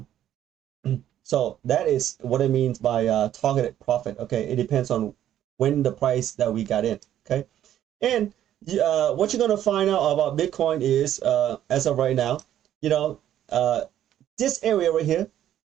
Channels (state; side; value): quieter; left; 11.4 dB